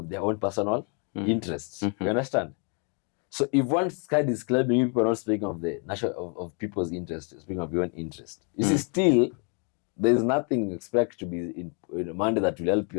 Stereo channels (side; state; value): right; quieter; 38.1 dB